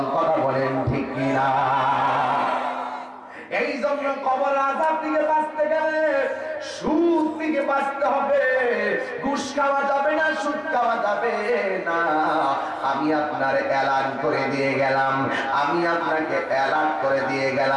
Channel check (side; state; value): both; identical; correlation 1.00